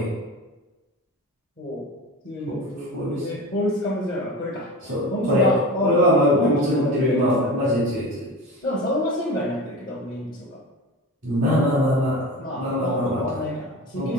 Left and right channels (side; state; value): both; normal; correlation 0.31